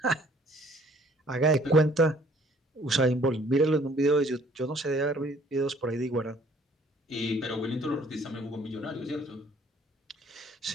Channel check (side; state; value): both; normal; correlation 0.59